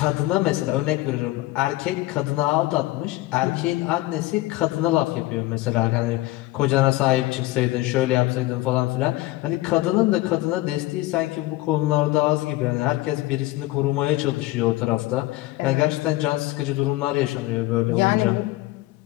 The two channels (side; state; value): right; quieter; 18.4 dB